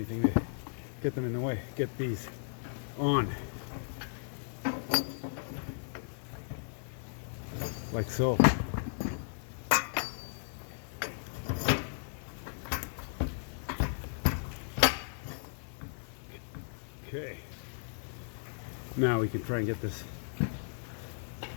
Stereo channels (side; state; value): right; silent; 54 dB below the other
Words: to get them in the way. Get these on. Like so. Okay. Now we can try and get this